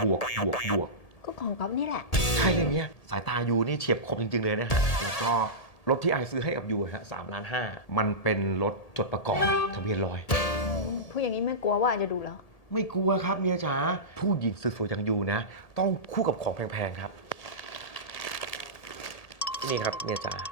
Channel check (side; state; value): right; late; 1.8 ms